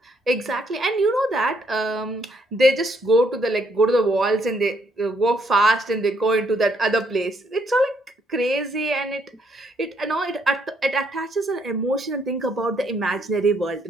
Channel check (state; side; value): normal; both; correlation 0.71